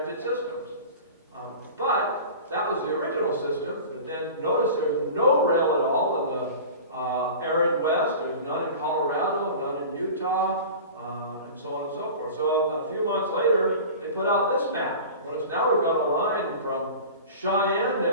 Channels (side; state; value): both; inverted; correlation -0.37